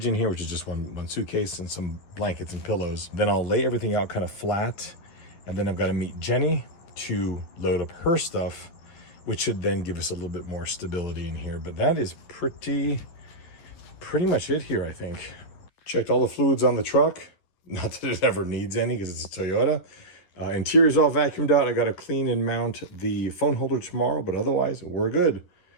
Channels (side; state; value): right; late; 11 ms